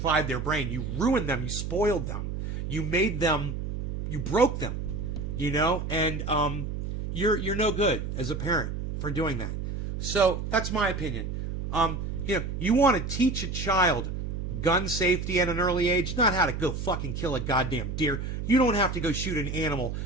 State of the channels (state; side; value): noise; right; hum, 4 dB below the sound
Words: their brain. You ruined them. You spoiled them. You made them. You broke them. You know, and you're no good as a parent for doing that. So that's my opinion. You know, you want to teach a child gun safety at an early age, not how to go fucking kill a goddamn deer. You don't have to go shoot an animal